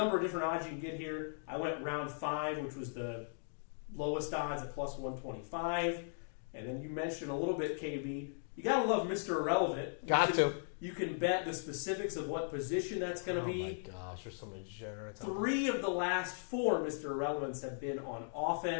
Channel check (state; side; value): silent; right; digital silence